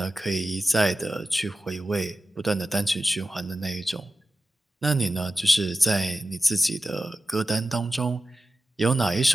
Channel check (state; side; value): normal; both; correlation 0.94